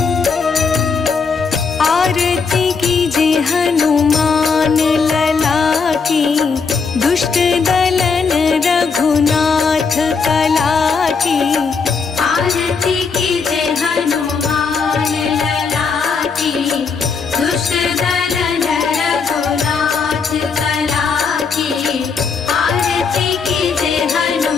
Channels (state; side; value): quieter; right; 5.2 dB